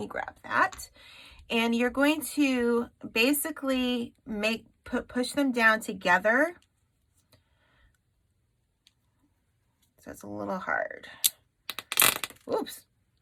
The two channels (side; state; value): both; identical; correlation 1.00